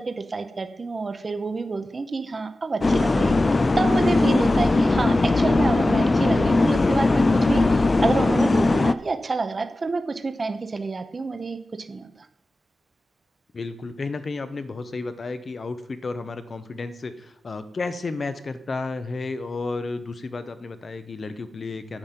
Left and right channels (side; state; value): both; normal; correlation 0.94